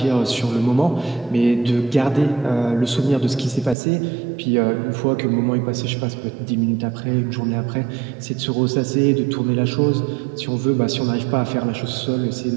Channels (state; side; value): drops out; left; at 3.8 s